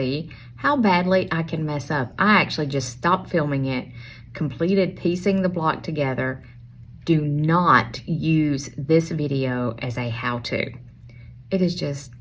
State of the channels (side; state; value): both; identical; correlation 1.00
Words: how badly I can mess up. I actually just stopped filming it, completed piecing the block together. Do not use this video as a how-to. It is just